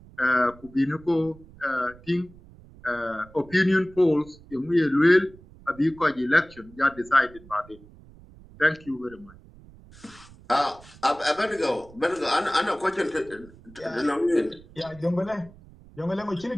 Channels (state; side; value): noise; right; rumble, 22 dB below the sound